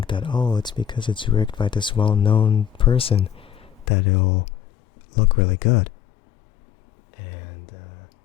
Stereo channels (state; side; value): drops out; right; at 3.9 s